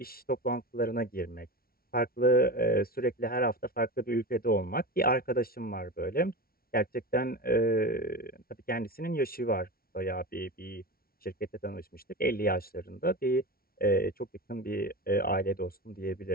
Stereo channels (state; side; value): late; right; 0.44 ms